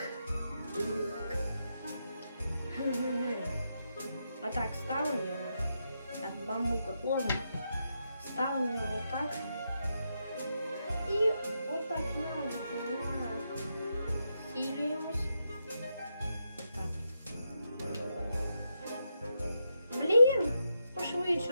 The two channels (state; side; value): inverted; both; correlation -0.84